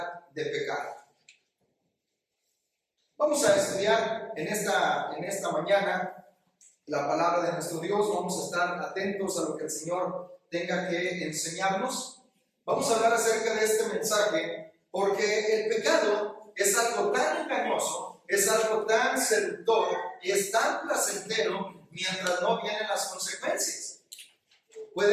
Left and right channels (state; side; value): identical; both; correlation 1.00